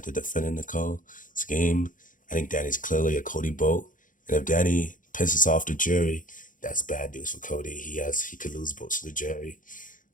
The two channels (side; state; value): right; late; 0.38 ms